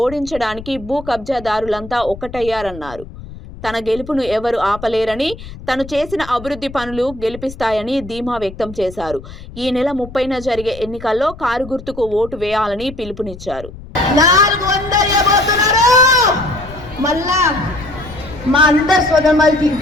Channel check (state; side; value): noise; left; rumble, 15 dB below the sound